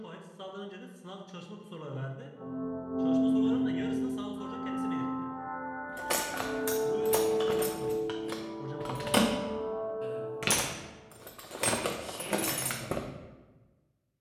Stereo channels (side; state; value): both; identical; correlation 1.00